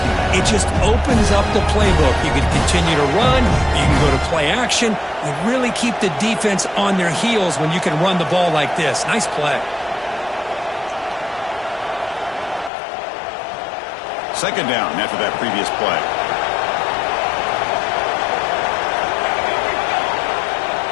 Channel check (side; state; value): right; drops out; at 12.7 s